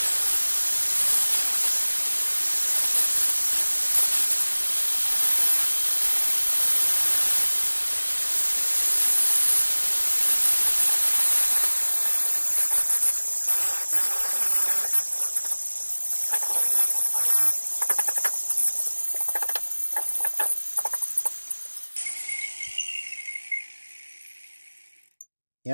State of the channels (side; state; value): both; inverted; correlation -1.00